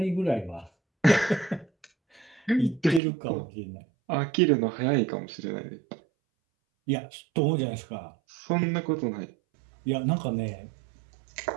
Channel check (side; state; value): left; drops out; at 3.0 s